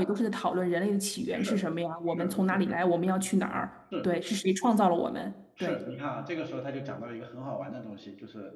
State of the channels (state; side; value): identical; both; correlation 1.00